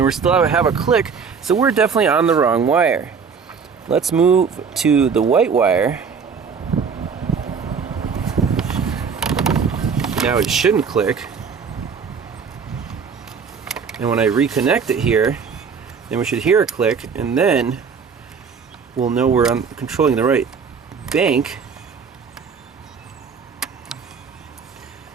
we still have a click, so we're definitely on the wrong wire. Let's move to the white wire. Now it shouldn't click. And when I reconnect it here, then we should hear a click, and then we'll know we're controlling the right bank.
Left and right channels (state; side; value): quieter; left; 6.0 dB